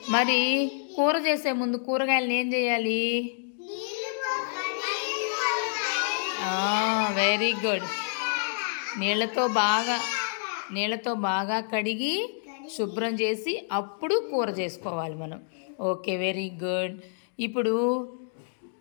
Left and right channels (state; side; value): silent; right; digital silence